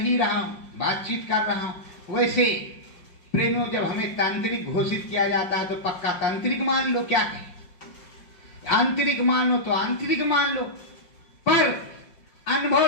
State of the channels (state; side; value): late; right; 5.7 ms